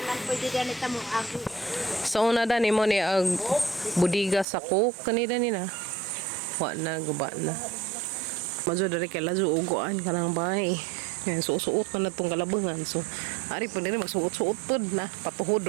So una da nimo ni ag budiga sa cook kanina nina. Wa na guba na. Majo dari kay lazo ugoan kanang bahay. Yan, suot na itong kalabangan. So, ari po nila magsuot-suot po na. Patuhod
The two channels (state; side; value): drops out; left; at 4.5 s